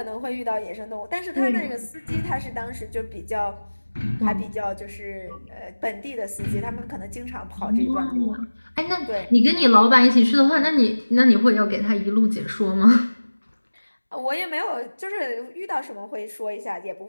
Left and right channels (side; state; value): both; inverted; correlation -1.00